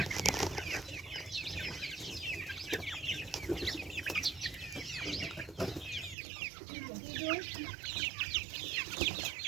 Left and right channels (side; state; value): left; drops out; at 6.2 s